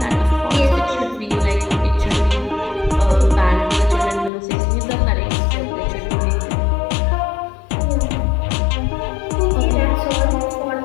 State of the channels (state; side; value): drops out; right; at 4.3 s